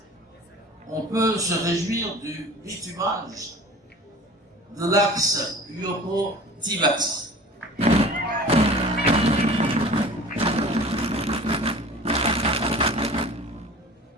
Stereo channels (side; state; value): both; normal; correlation 0.42